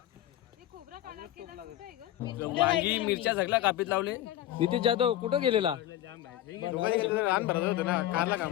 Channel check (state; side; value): quieter; right; 13.4 dB